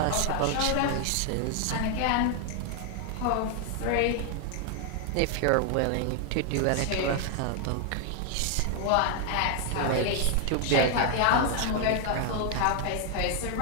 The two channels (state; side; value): different; both; correlation 0.00